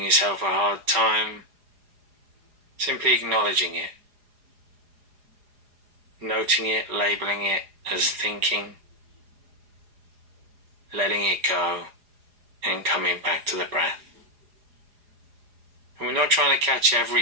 yourself a hard time, simply acknowledging it, noting it, labeling it as thinking, letting it go, and coming back to the breath. And we're not trying to catch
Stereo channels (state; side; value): late; left; 4.9 ms